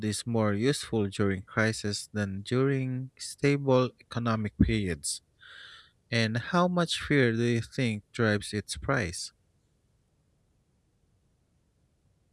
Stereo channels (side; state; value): both; identical; correlation 1.00